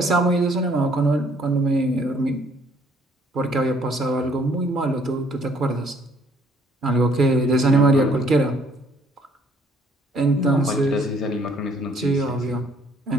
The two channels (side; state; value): both; normal; correlation 0.63